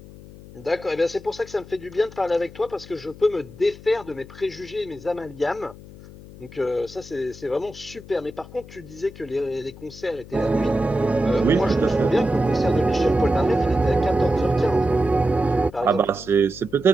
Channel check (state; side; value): noise; left; hum, 18 dB below the sound